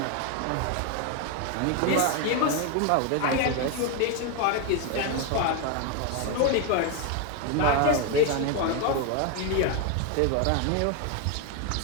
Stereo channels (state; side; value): different; both; correlation 0.01